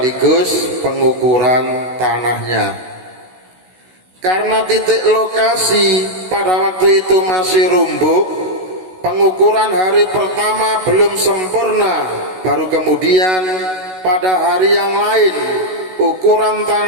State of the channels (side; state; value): left; late; 16 ms